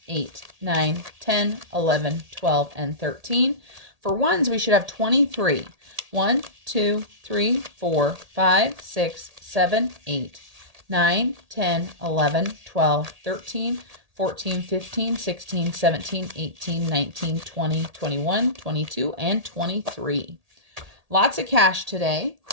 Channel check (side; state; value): left; late; 1.8 ms